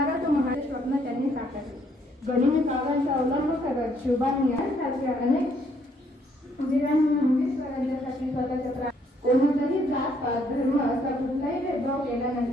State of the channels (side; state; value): both; normal; correlation 0.68